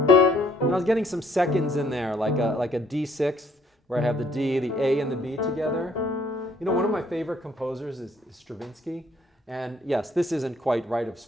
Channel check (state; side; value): normal; both; correlation 0.63